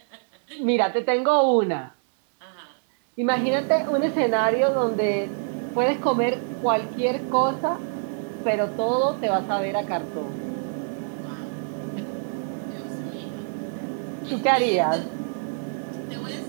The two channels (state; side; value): silent; left; digital silence